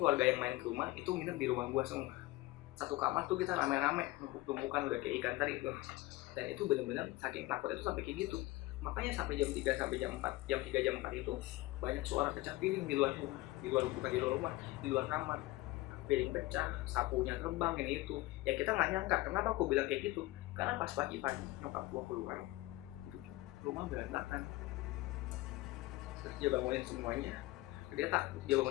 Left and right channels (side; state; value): right; quieter; 19.2 dB